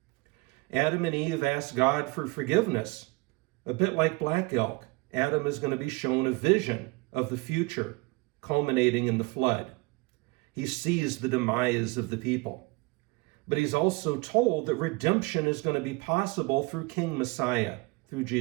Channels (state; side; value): quieter; left; 24.9 dB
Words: Adam and Eve asked God for forgiveness. A bit like Black Elk, Adam is going to be shown a vision of the future, culminating in the flood. He sees the demise of the people. But he's also told that redemption is going to be possible through King Messiah, through